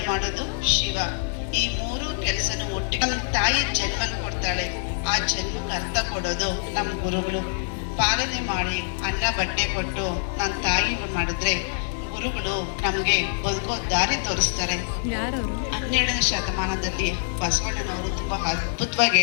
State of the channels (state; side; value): silent; right; 60 dB below the other